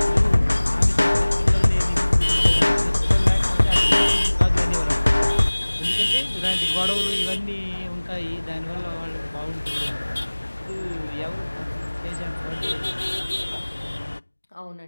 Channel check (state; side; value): inverted; both; correlation -1.00